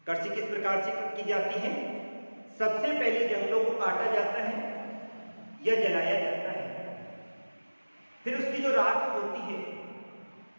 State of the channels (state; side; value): inverted; both; correlation -1.00